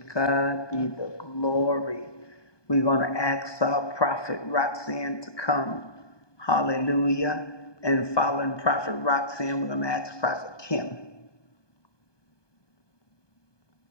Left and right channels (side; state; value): right; late; 1.2 ms